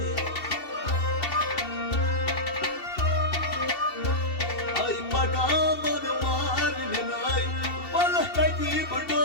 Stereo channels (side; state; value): right; late; 2.7 ms